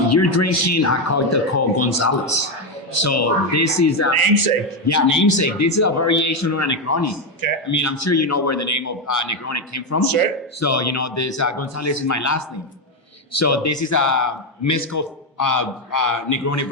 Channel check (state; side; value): normal; both; correlation 0.08